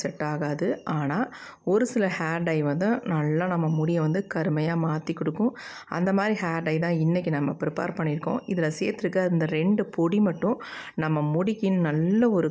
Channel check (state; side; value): identical; both; correlation 1.00